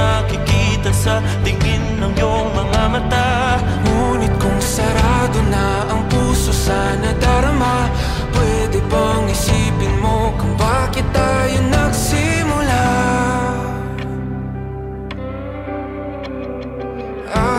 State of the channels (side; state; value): both; identical; correlation 1.00